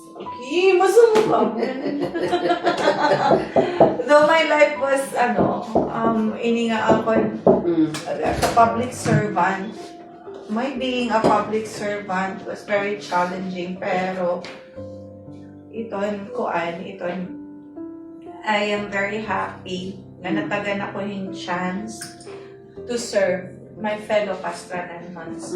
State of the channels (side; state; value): both; identical; correlation 1.00